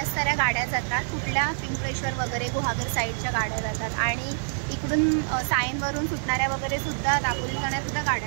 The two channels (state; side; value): silent; left; 61 dB below the other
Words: साऱ्या गाड्या जातात. कुठल्या पिंपळेश्वर वगैरे गुहागर साईडच्या गाड्या जातात आणि इकडून सायनवरून सुटणाऱ्या वगैरे सुद्धा दापोली जाणाऱ्या सुद्धा